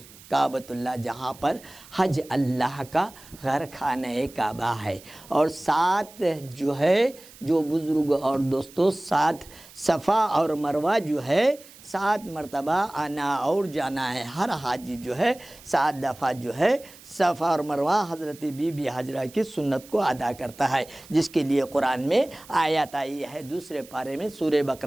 کعبۃ اللہ جہاں پر حج اللہ کا غر خانہ کعبہ ہے. اور 7 جو ہے جو بزرگ اور دوستوں 7 صفا اور مروہ جو ہے 7 مرتبہ آنا اور جانا ہے. ہر حاجی جو ہے 7 دفعہ جو ہے صفا اور مروہ حضرت بی بی حاجرہ کی سنت کو ادا کرتا ہے، جس کے لیے قرآن میں آیت آئی ہے 2 پارے میں سورہ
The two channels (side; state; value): right; noise; hiss, 21 dB below the sound